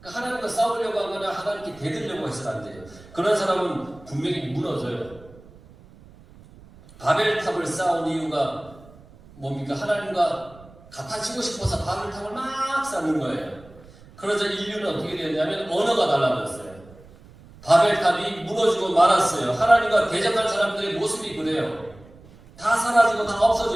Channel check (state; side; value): noise; right; rumble, 23 dB below the sound